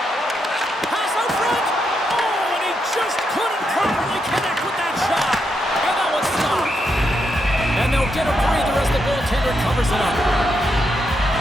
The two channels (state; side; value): normal; both; correlation 0.81